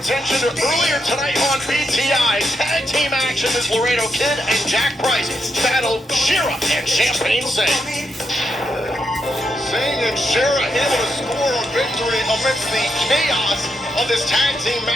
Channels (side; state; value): both; normal; correlation 0.82